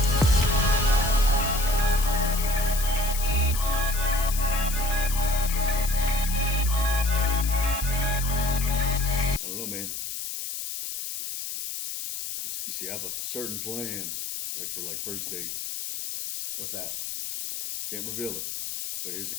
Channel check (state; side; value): noise; left; hiss, 6 dB below the sound